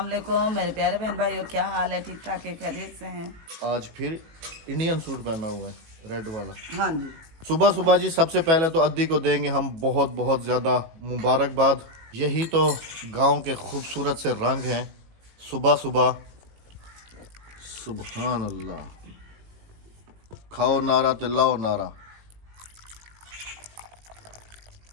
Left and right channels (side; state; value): left; late; 18 ms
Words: वालेकुम मेरे प्यारे बहन भाइयों, क्या हाल है? ठीक ठाक है, खैरियत से हैं? आज फिर इंडियन सूट पहना हुआ है, रेड वाला। हाँ जी। सुबह सुबह जी सबसे पहले तो अद्दी को देंगे हम बहुत बहुत ज़्यादा मुबारकबाद। यही तो गांव के खूबसूरत से रंग हैं सुबह सुबह। सुभान अल्लाह। खाओ नारा ते लाओ नारा।